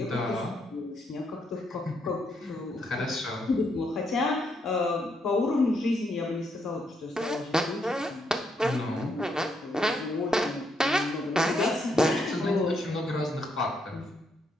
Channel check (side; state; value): both; normal; correlation 0.76